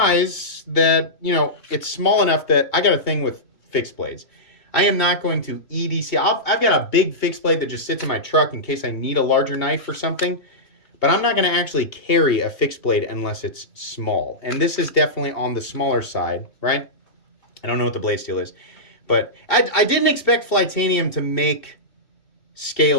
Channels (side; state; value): right; late; 2.7 ms